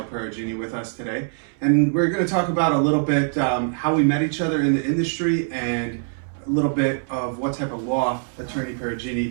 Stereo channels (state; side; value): silent; left; 63 dB below the other